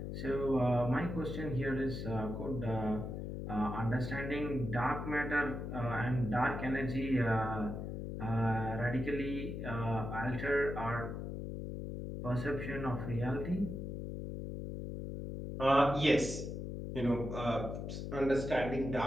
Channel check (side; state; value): left; noise; hum, 5 dB below the sound